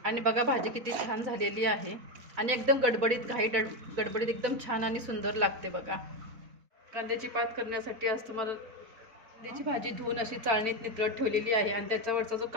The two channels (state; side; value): late; left; 4.5 ms